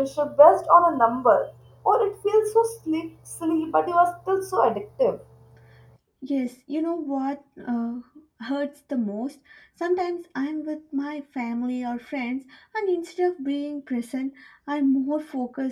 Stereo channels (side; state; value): both; identical; correlation 1.00